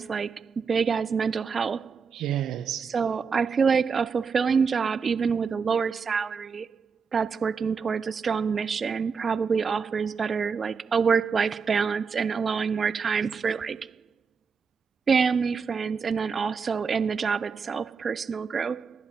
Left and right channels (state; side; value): quieter; left; 5.6 dB